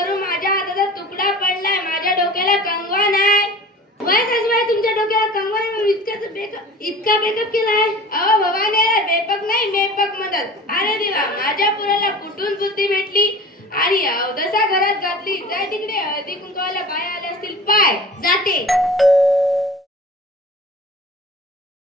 माझ्या हाताचा तुकडा पडलाय, माझ्या डोक्याला कंगवा नाही. वय सासूबाई, तुमच्या डोक्याला कंगवा नाही, इतका मेकअप केलाय? अहो भवानी, बेपक नाही मेपक मदत. अरे देवा, माझ्या पुराला कुठून बुद्धी भेटली आणि अवदसा घरात घातली. जाय तिकडे, हळदी कुंकवाला बाय आले असतील पाय. जाते.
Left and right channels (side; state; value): both; normal; correlation 0.40